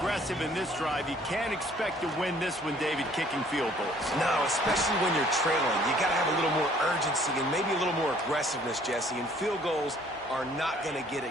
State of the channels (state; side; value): normal; both; correlation 0.58